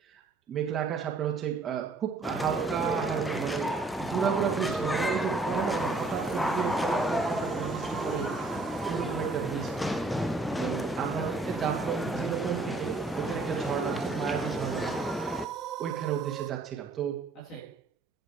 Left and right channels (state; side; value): quieter; left; 3.6 dB